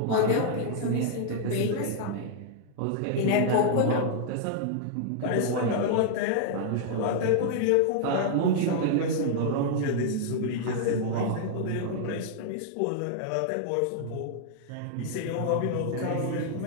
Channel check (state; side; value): different; both; correlation 0.00